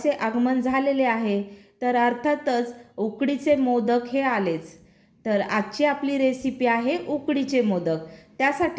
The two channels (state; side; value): identical; both; correlation 1.00